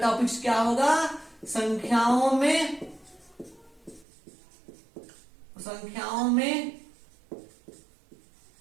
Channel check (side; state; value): left; drops out; at 4.0 s